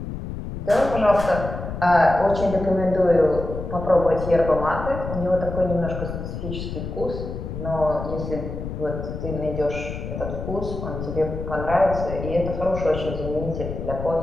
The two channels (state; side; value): noise; left; rumble, 7 dB below the sound